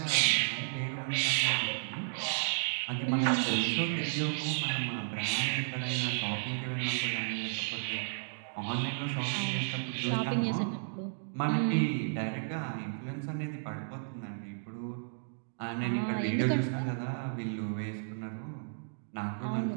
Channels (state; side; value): silent; left; digital silence